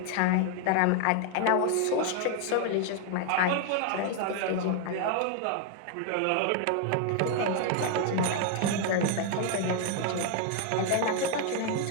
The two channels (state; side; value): different; both; correlation 0.00